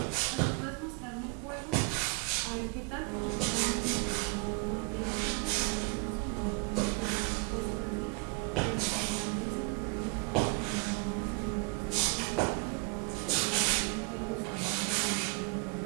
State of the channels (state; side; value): quieter; left; 31.0 dB